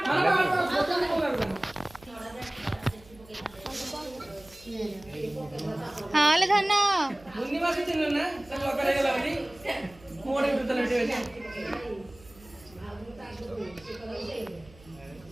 हाँ ले धन्ना मुन्नी मासी चिन्ह ना सब लोग करेगा लावनी मोड़े उठते लेटे बैठे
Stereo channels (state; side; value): noise; right; hum, 24 dB below the sound